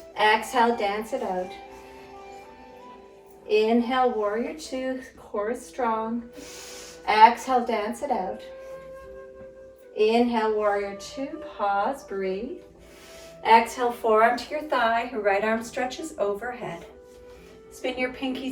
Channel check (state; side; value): identical; both; correlation 1.00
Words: Exhale, dance it out. Inhale, warrior 2, core is strong. Exhale, dance it out. Inhale, warrior 2, pause, breathe. Exhale, forearm to your thigh, right arm stretches overhead. Spin your